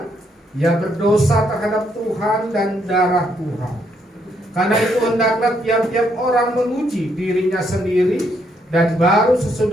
ia berdosa terhadap Tuhan dan darah Tuhan. Karena itu hendaklah tiap-tiap orang menguji dirinya sendiri, dan baru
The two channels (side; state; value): both; normal; correlation 0.73